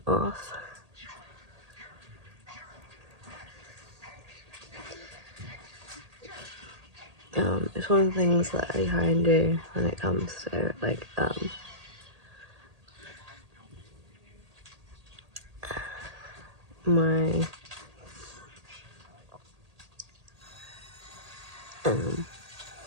off. It's one of the things that I try and do when it comes to like my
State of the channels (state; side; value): late; left; 1.8 ms